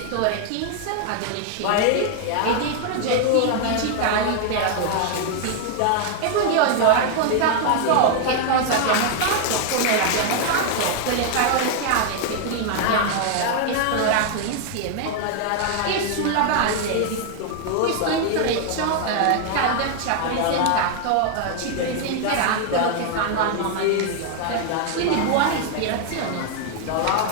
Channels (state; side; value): different; both; correlation 0.00